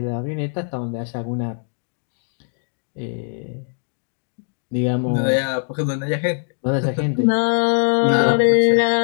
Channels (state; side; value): silent; right; digital silence